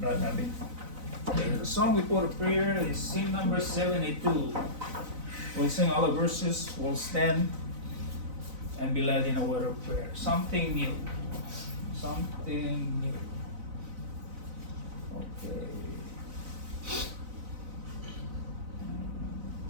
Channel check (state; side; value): late; left; 4.0 ms